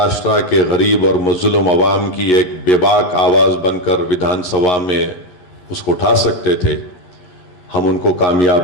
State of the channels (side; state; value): right; late; 11 ms